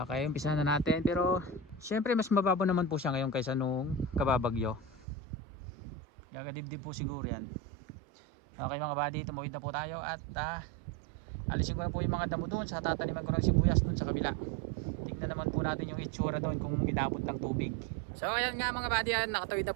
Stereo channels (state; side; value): drops out; left; at 5.1 s